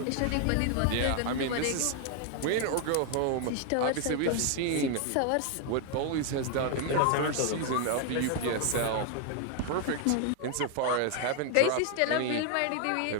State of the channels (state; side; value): different; both; correlation 0.00